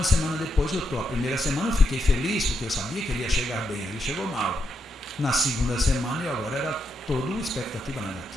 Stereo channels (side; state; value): both; normal; correlation 0.82